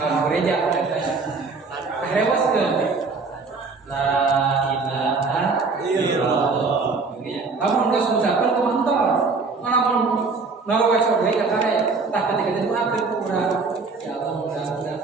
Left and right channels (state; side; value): quieter; left; 4.3 dB